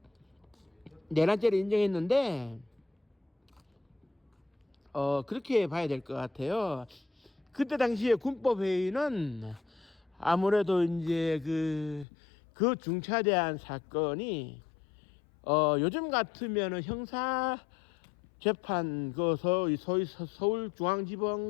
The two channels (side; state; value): right; drops out; at 12.1 s